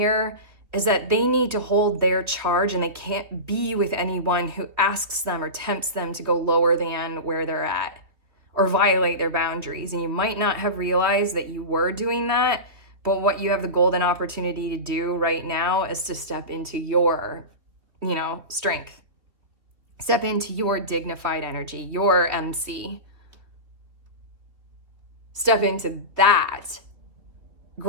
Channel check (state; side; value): late; left; 3.1 ms